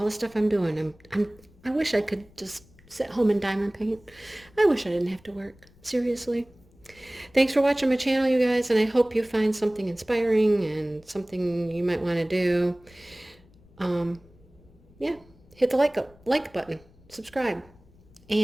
the stuff I'm doing. I wish I could just sit home and diamond paint. I wish I didn't have to work. Seriously. Thanks for watching my channel, you guys, and I hope you find something inspiring and something you might want to do. Yeah, hit the like button, subscribe,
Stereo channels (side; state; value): left; noise; rumble, 27 dB below the sound